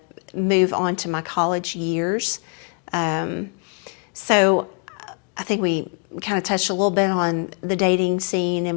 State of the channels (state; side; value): quieter; right; 38.2 dB